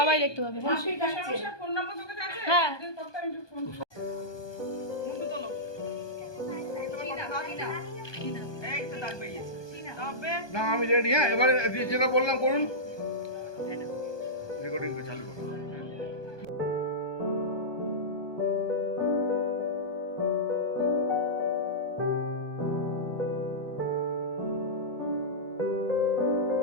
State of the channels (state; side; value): late; right; 1.2 ms